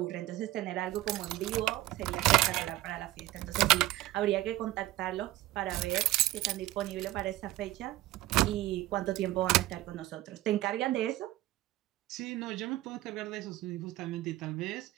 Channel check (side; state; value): left; quieter; 16.4 dB